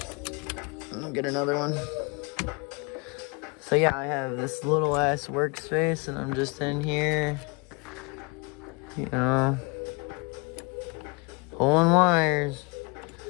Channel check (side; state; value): right; quieter; 29.5 dB